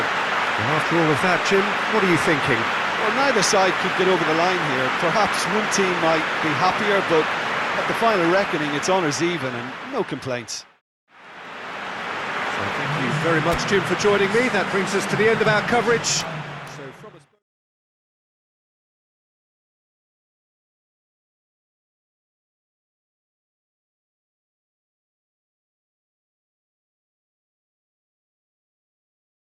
And after all of that, Jim, what are you thinking? Well, neither side could get over the line here. Perhaps one team might be happier, but at the final reckoning, it's honours even and no complaints. So thank you very much, Jim, for joining me. That brings us to the end of our coverage.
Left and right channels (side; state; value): both; identical; correlation 1.00